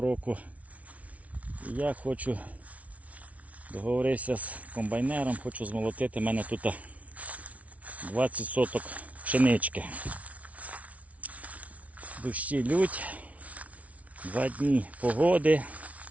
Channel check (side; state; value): left; late; 0.067 ms